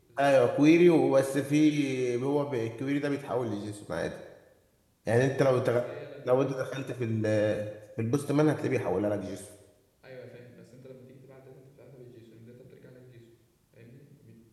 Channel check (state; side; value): identical; both; correlation 1.00